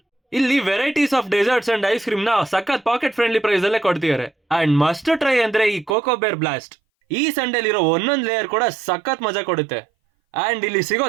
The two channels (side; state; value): left; drops out; at 6.0 s